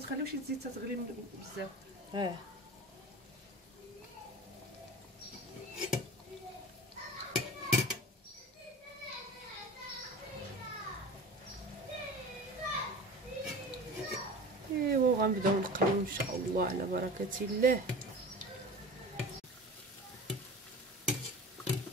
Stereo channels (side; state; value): both; normal; correlation 0.36